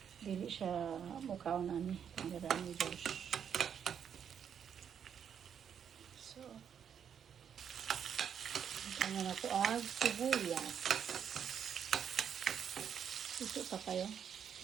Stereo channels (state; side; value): quieter; left; 8.1 dB